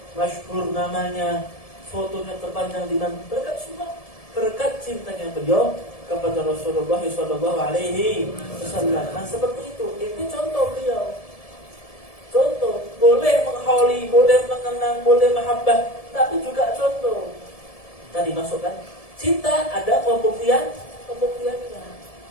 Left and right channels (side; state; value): right; late; 1.7 ms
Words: masyhur namanya, fotonya terpanjang di mana, berkat semua, berkat cintanya beliau kepada Rasulullah Sallallahu Alaihi Wasallam. Nah seperti itu, ini contoh beliau. Contoh boleh mengkholi, boleh mengenang, boleh mahabbah, tapi juga contoh. Tadi masukkan cinta ada pembuktiannya.